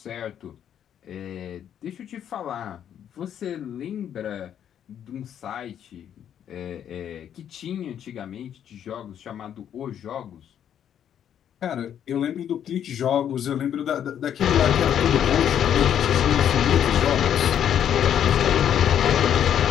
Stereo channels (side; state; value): right; quieter; 9.5 dB